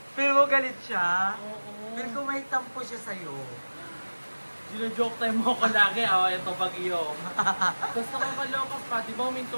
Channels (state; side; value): inverted; both; correlation -1.00